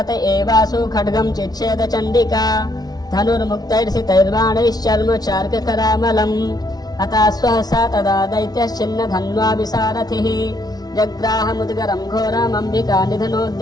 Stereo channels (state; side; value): late; right; 0.19 ms